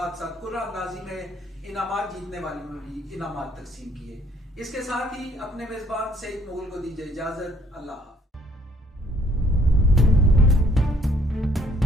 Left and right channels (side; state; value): both; normal; correlation 0.64